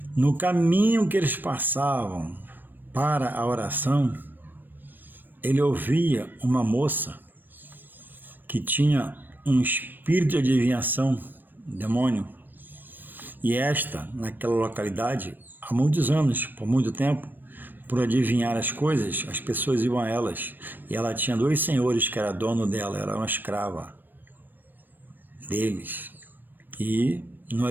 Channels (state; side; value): late; left; 0.092 ms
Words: no caminho que eles passavam para a oração, ele ouvia uma moça que tinha um espírito de adivinhação, demônio, e esta, naquela localidade, há muitos anos, por muito tempo, por adivinhar as coisas, as pessoas iam a elas, e ela tinha 2 senhores que era dono dela, era uma escrava deles, e no